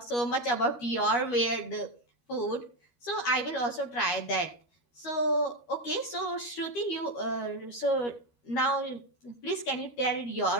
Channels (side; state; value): right; late; 13 ms